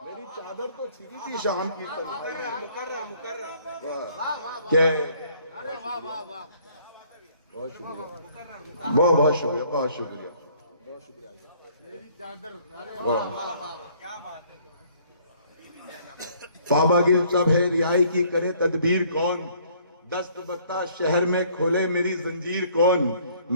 मेरी चादर तो छिनी थी शाम की तन्हाई में। बहुत शुक्रिया, बहुत शुक्रिया, बहुत शुक्रिया, बहुत शुक्रिया। पावागिल सब है, रिहाई की करे तदबीर कौन, दस्त बत्ता शहर में खोले मेरी जंजीर कौन।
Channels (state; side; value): inverted; both; correlation -0.60